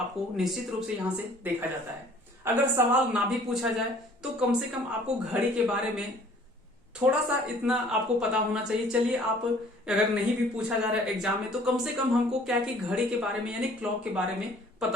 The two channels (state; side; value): normal; both; correlation 0.54